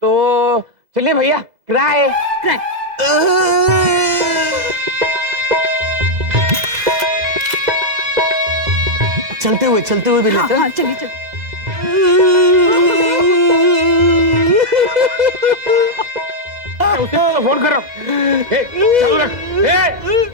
चलिए भैया क्राई। चलते हुए भी लेते हैं। हाँ चलिए। उसे तो फोन कर रहा हूँ। चालू रख।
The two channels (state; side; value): late; left; 2.0 ms